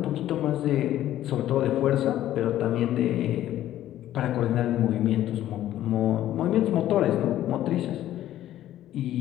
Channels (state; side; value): quieter; right; 12.9 dB